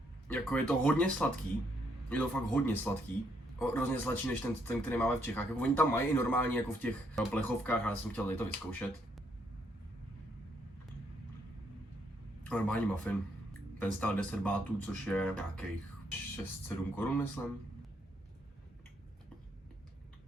Jako je to hodně sladký. Je to fakt hodně sladký. Hrozně sladší než ten, který máme v Čechách. Jako oni tam mají i normálně jako v těch plechovkách, ale já jsem chtěl tady to vyzkoušet. Normální muffin. Ten stál 10 bátů, což je nějakých 6-7 korun, myslím.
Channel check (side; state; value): both; normal; correlation 0.73